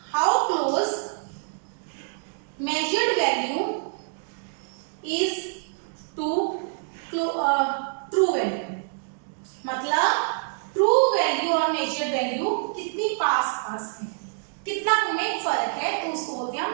measured value is to true value. मतलब ट्रू वैल्यू और मेजर्ड वैल्यू कितनी पास है, कितना उनमें फर्क है, तो उसको बोलते हैं हम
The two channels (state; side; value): silent; left; digital silence